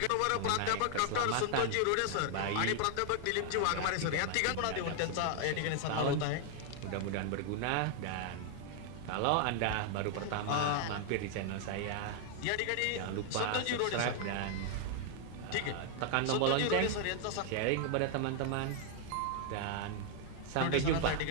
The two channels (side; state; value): both; different; correlation 0.00